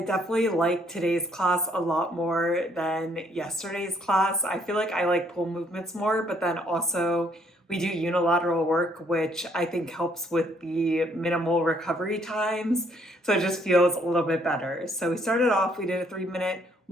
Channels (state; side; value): normal; both; correlation 0.67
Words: like today's class a lot more than yesterday's class. I feel like I like pull movements more, but then also we do unilateral work, which I think helps with the minimal recovery times. So it just feels a little bit better. So we started off, we did a 3-minute